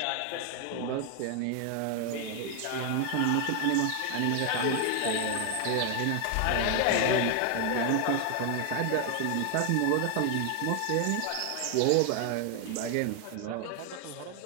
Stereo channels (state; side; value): different; both; correlation 0.00